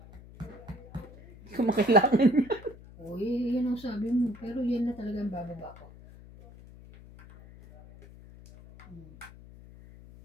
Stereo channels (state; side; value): noise; left; hum, 19 dB below the sound